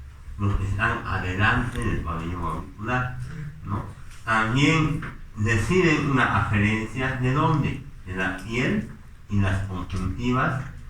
los que están adelante del pabellón auricular, ¿no? También reciben una aferencia de dónde, de la piel y las conjuntivas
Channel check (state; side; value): identical; both; correlation 1.00